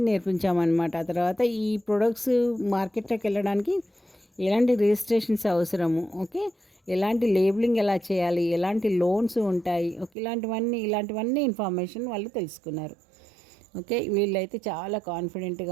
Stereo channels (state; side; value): drops out; left; at 10.1 s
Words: నేర్పించామనమాట. ఆ తర్వాత ఈ ప్రొడక్ట్స్ మార్కెట్‌లోకి వెళ్ళడానికి ఎలాంటి రిజిస్ట్రేషన్స్ అవసరము, ఓకే. ఎలాంటి లేబులింగ్ ఎలా చేయాలి? ఎలాంటి లోన్స్ ఉంటాయి? ఓకే. ఇలాంటివన్నీ ఇన్ఫర్మేషన్ వాళ్ళు తెలుసుకున్నారు. ఓకే. వీళ్ళైతే చాలా